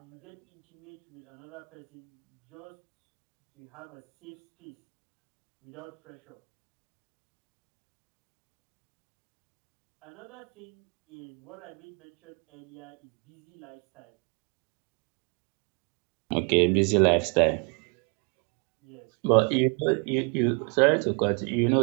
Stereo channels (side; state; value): left; quieter; 36.5 dB